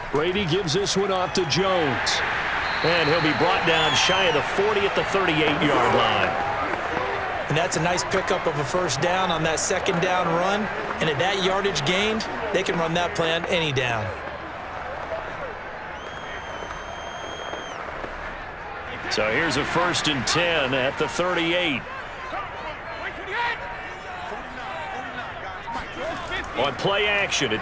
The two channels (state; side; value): identical; both; correlation 1.00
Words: Brady gives this one off to Jones. And he'll be brought down shy of the 40 at the 38-yard line. And that's a nice pickup of a first down on that second down run. And at that yardage gained, they can run that play on any down. So here's a 1st and 10 at the 38. On play action,